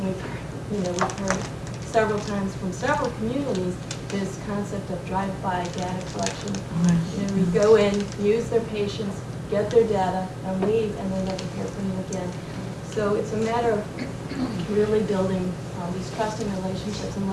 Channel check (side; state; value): both; identical; correlation 1.00